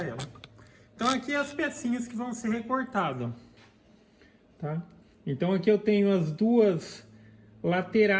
ela. Então aqui as pecinhas que vão ser recortadas, tá? Então aqui eu tenho as duas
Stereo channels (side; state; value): both; identical; correlation 1.00